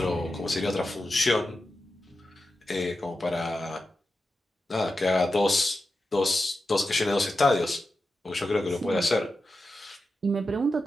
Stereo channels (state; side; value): normal; both; correlation 0.91